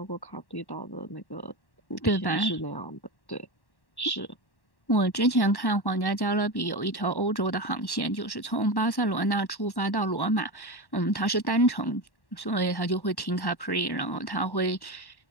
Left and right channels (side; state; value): right; late; 1.1 ms